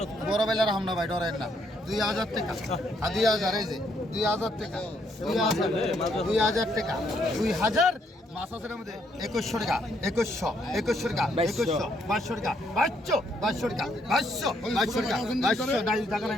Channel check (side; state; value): both; normal; correlation 0.72